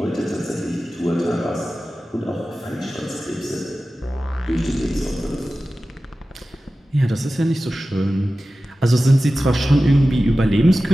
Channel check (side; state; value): both; normal; correlation 0.95